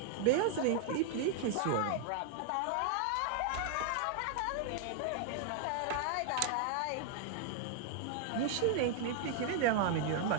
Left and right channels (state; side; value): different; both; correlation 0.00